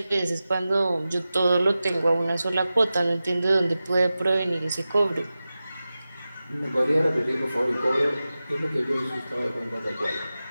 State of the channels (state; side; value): inverted; both; correlation -0.95